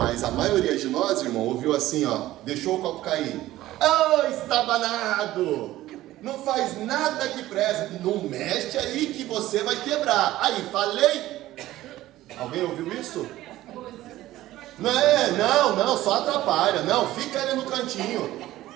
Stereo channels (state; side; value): quieter; left; 15.5 dB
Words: a maioria de nós, irmão, ouviu assim, ó. Deixou o copo cair. Oh, estabanado! Não faz nada que presta. Não mexe aí que você vai quebrar. Aí, falei. Alguém ouviu isso? Não, só atrapalha. Não, fica ali no cantinho.